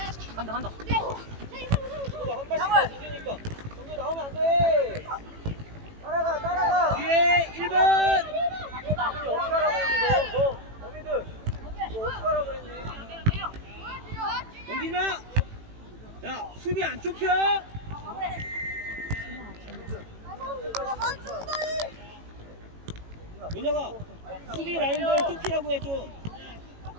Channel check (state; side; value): late; left; 18 ms